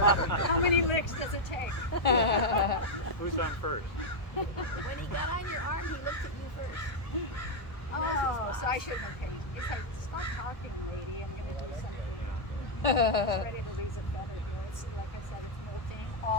How many licks does it take? Who's on first? When he got on your arm, he looked at you first. Oh, so I should have been paying. He's like, stop talking, lady. I'm going to do something. He's ready to lose a feather here. It's like I said, it's molting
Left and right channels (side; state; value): right; late; 1.2 ms